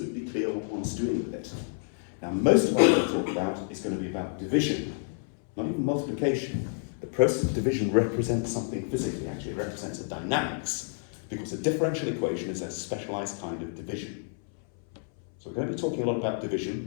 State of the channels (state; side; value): silent; right; 58 dB below the other